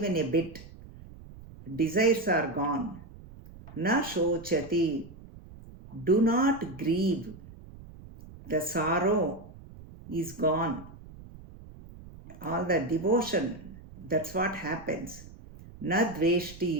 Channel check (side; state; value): right; noise; rumble, 18 dB below the sound